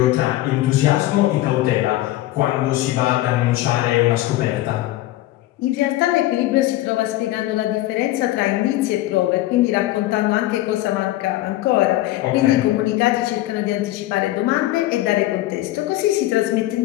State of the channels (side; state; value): right; quieter; 16.1 dB